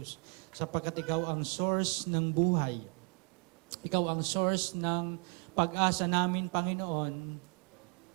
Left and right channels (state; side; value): quieter; left; 34.1 dB